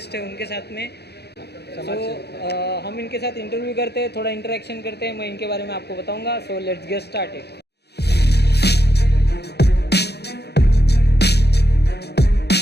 हैं उनके साथ में. सो हम इनके साथ इंटरव्यू करते हैं, थोड़ा इंटरेक्शन करते हैं. मैं इनके बारे में आपको बताऊंगा. So let's get started.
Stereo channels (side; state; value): right; late; 0.48 ms